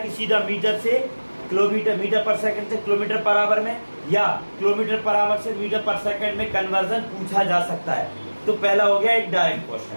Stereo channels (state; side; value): inverted; both; correlation -1.00